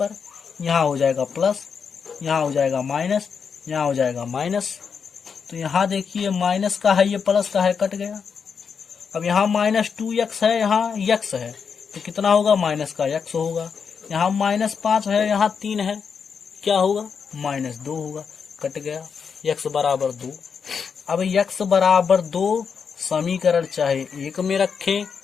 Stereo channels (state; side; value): quieter; right; 6.3 dB